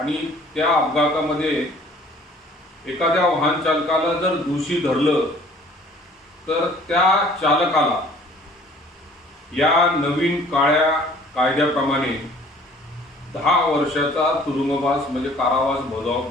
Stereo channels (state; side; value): normal; both; correlation 0.53